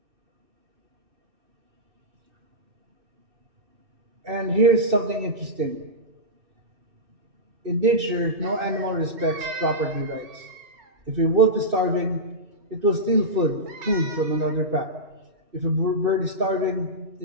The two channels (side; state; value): left; late; 2.6 ms